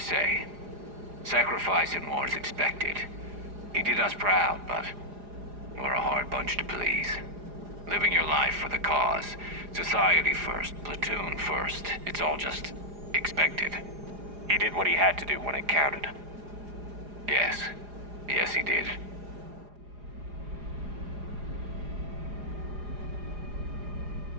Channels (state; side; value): late; left; 4.9 ms